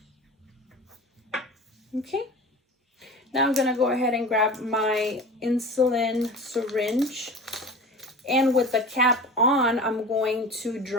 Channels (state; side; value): normal; both; correlation 0.35